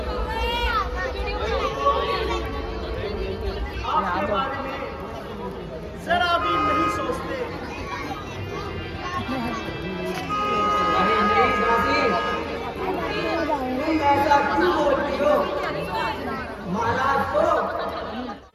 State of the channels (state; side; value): identical; both; correlation 1.00